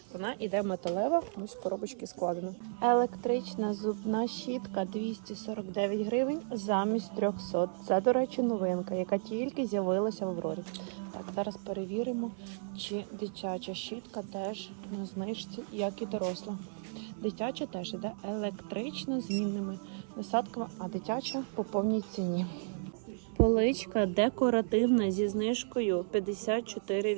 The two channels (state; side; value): silent; left; 55 dB below the other